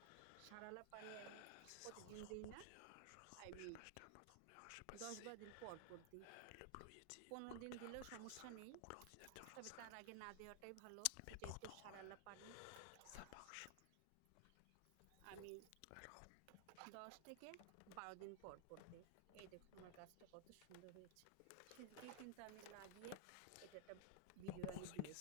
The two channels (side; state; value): both; different; correlation 0.00